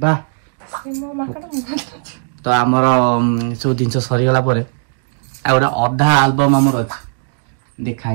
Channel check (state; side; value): silent; left; digital silence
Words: बा मो मांकड़ तो हमरो सो दिन सरी गला परे आ गोटे अधा एल्बम हमर अछि देखाइ